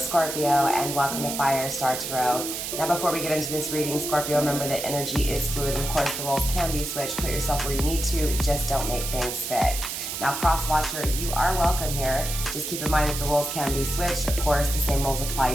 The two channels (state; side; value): noise; right; hiss, 5 dB below the sound